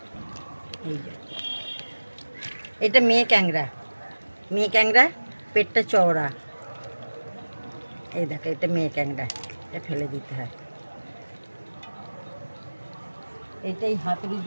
এই যে এটা মেয়ে ক্যাংরা, পেটটা চওড়া। এই দেখো, এটা মেয়ে ক্যাংরা, এটা ফেলে দিতে হয়। এইটাই হাতুড়ি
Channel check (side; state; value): both; inverted; correlation -1.00